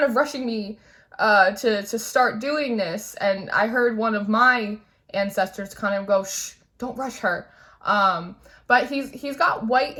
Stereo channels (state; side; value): identical; both; correlation 1.00